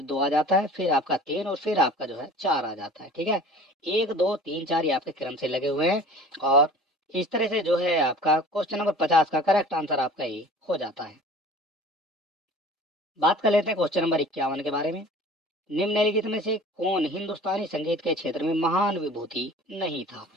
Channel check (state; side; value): normal; both; correlation 0.44